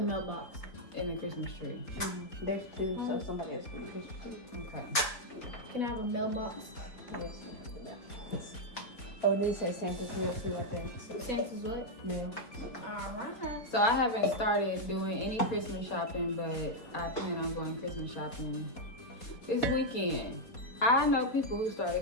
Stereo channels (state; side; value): late; right; 4.2 ms